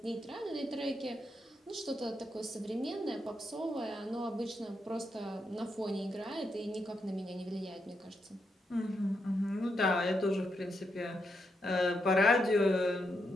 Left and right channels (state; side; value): normal; both; correlation 0.82